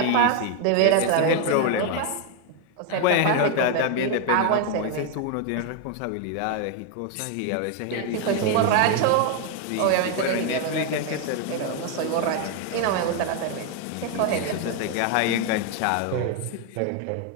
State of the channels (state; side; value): different; both; correlation 0.01